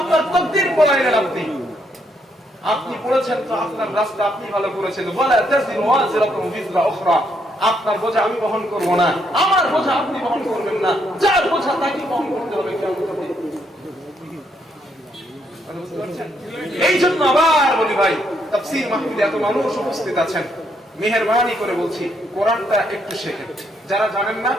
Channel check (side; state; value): both; normal; correlation 0.74